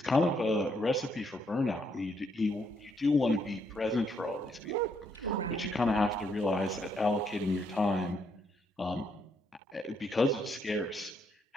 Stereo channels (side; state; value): both; normal; correlation 0.74